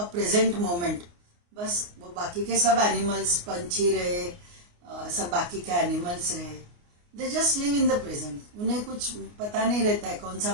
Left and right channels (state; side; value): late; left; 29 ms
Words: present moment. बस वो बाकी के सब एनिमल्स, पंछी रहे, सब बाकी के एनिमल्स रहे, they just live in the present. उन्हें कुछ पता नहीं रहता है कौन सा